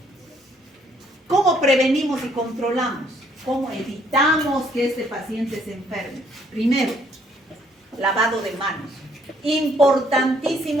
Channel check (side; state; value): both; normal; correlation 0.66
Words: ¿Cómo prevenimos y controlamos? ¿Cómo evitamos que este paciente se enferme? Primero, lavado de manos.